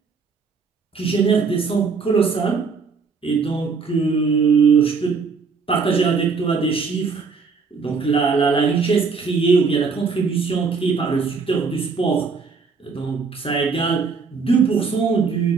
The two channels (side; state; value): left; quieter; 5.0 dB